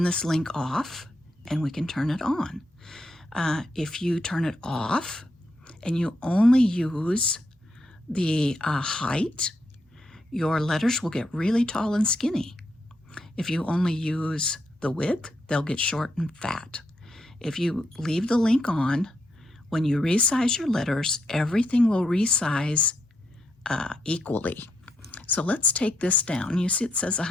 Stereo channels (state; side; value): normal; both; correlation 0.80